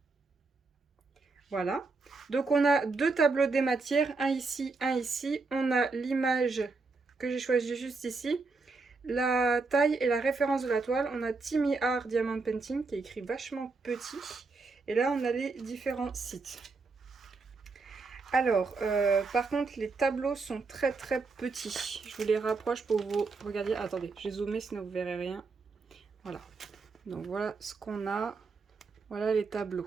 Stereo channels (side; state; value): left; quieter; 4.1 dB